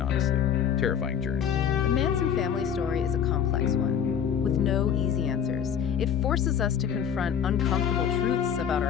honestly terrifying journey. The Manson family story is a complex one, with no easy answers. It forces us to confront uncomfortable truths about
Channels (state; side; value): quieter; right; 8.4 dB